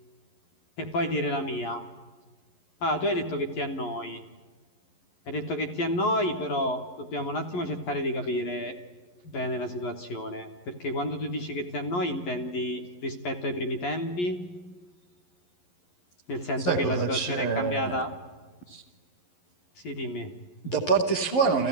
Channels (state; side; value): late; right; 11 ms